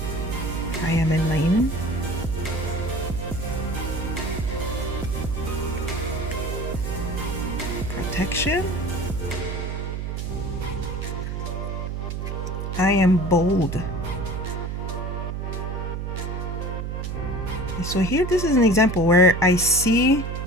I am enlightened. Protection. I am bold. So here, this is an example where I see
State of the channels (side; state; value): right; noise; hum, 4 dB below the sound